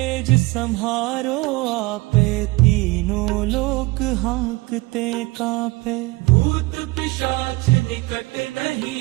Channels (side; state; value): left; quieter; 22.2 dB